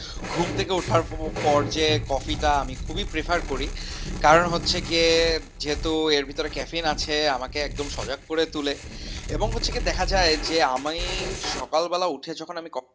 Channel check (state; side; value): identical; both; correlation 1.00